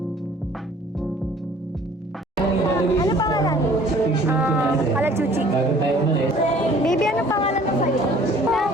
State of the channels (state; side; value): normal; both; correlation 0.53